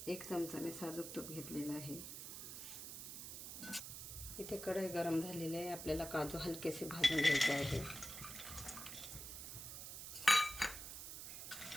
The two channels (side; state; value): right; noise; hiss, 8 dB below the sound